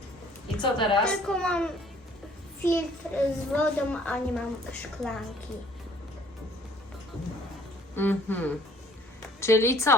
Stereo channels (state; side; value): normal; both; correlation 0.57